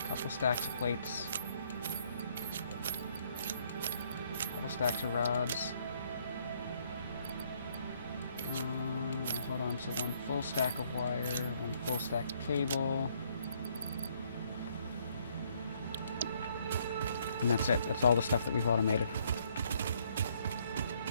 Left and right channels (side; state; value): both; inverted; correlation -0.67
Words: Couple stacks of plates. Couple stacks of rods. Hold on, so one full stack of wire, one full stack of cable. And that's it. That's all the stuff that we've automated.